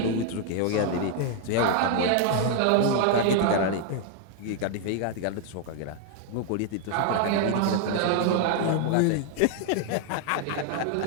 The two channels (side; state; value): both; different; correlation 0.00